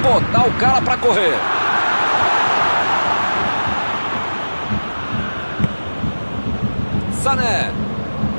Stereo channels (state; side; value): inverted; both; correlation -1.00